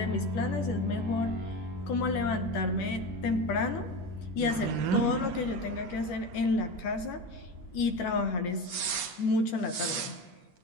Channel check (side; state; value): right; late; 10 ms